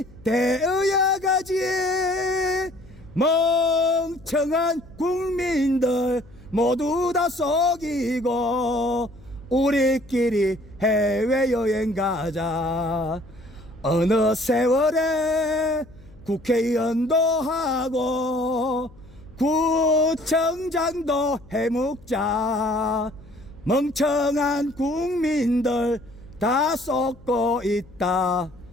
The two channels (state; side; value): noise; left; hum, 24 dB below the sound